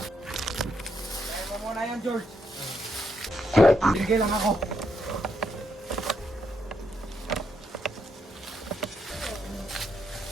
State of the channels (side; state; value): both; normal; correlation 0.78